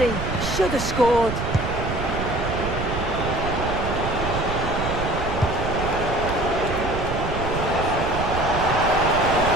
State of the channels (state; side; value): noise; right; rumble, 5 dB below the sound